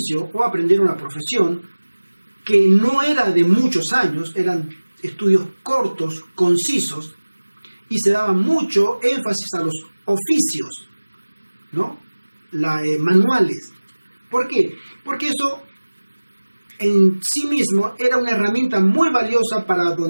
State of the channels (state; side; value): inverted; both; correlation -1.00